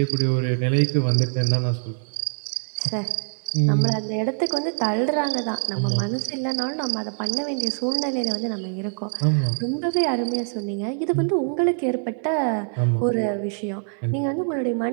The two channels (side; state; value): left; silent; 59 dB below the other